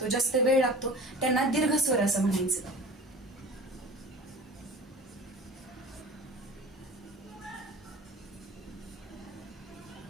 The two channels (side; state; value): both; normal; correlation 0.39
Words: जास्त वेळ लागतो, त्यांना दीर्घ स्वर असं म्हणायचं.